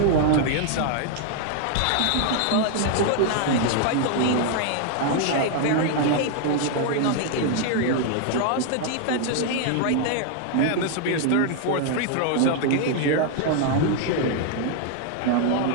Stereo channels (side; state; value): both; different; correlation 0.00